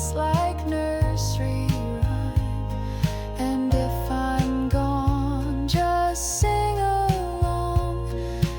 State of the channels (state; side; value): identical; both; correlation 1.00